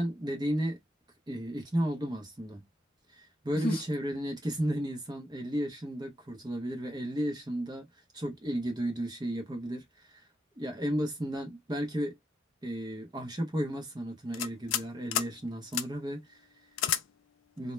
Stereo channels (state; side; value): normal; both; correlation 0.78